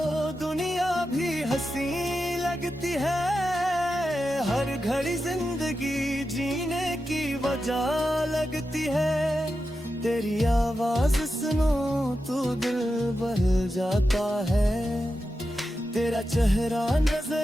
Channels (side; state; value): both; normal; correlation 0.90